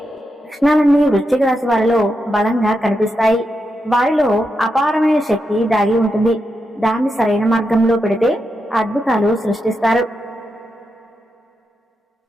లక్షణాలన్నీ వృశ్చిక రాశి వారిలో బలంగా కనిపిస్తాయి. వారిలో అపారమైన శక్తి దాగి ఉంటుంది. దాన్ని సరైన మార్గంలో పెడితే అద్భుతాలు సృష్టిస్తారు.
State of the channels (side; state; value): both; normal; correlation 0.86